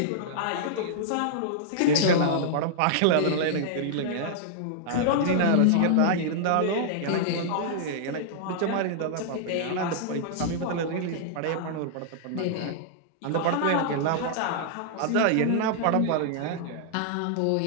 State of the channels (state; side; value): different; both; correlation -0.01